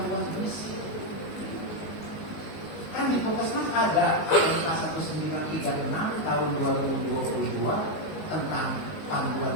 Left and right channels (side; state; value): right; late; 19 ms